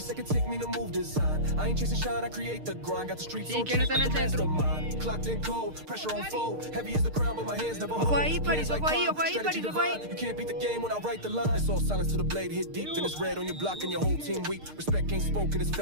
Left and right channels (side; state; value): left; late; 6.6 ms